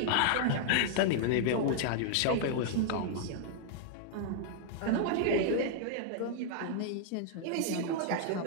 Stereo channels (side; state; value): both; different; correlation -0.01